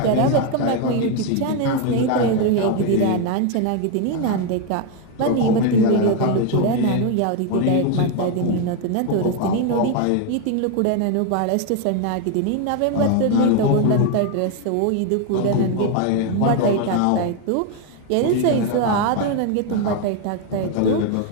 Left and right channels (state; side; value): different; both; correlation 0.01